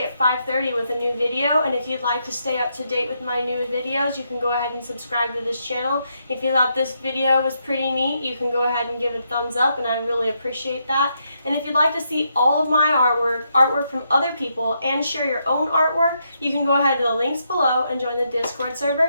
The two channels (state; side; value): inverted; both; correlation -0.79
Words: at 5:30 with a new video, and if you'd like to stay up to date with my new videos, you can go ahead and subscribe to this channel. If you thought this video was pretty neat, you can go ahead and give it a thumbs up, and I really appreciate that. And if you'd like to see all of my artwork from other people, and share your own artwork, you can go ahead to the links below and join the Discord